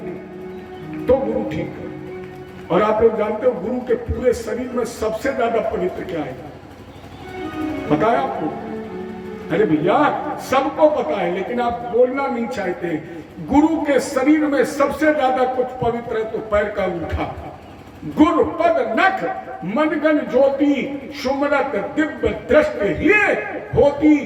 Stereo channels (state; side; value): identical; both; correlation 1.00